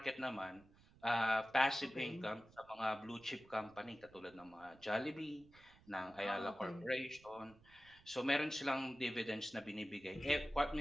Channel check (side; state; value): right; noise; rumble, 25 dB below the sound